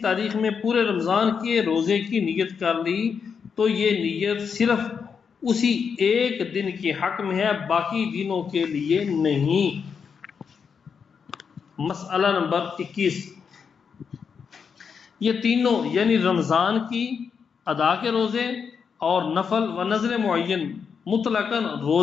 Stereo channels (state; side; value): quieter; right; 6.3 dB